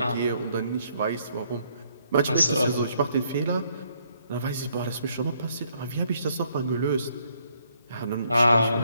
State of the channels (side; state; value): both; inverted; correlation -0.69